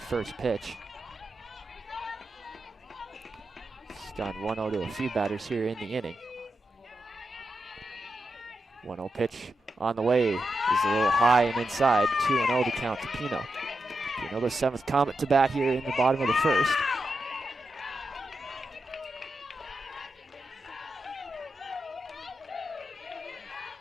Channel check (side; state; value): both; normal; correlation 0.87